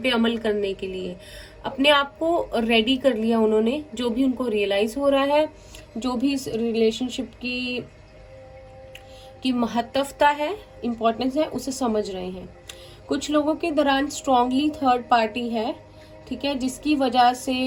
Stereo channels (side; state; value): both; identical; correlation 1.00